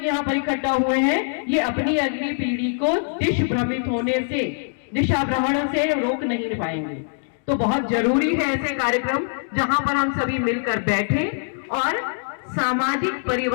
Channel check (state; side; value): silent; right; digital silence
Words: यहाँ पर इकट्ठा हुए हैं, ये अपनी अगली पीढ़ी को दिशा भ्रमण से रोक नहीं पाएंगे। तो बहुत जरूरी है ऐसे कार्यक्रम जहां पर हम सभी मिलकर बैठे और सामाजिक